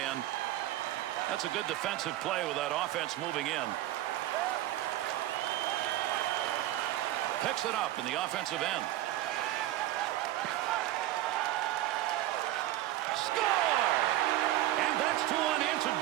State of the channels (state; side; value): quieter; left; 14.5 dB